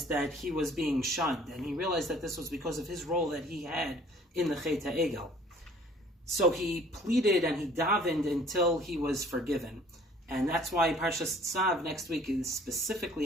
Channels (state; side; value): normal; both; correlation 0.54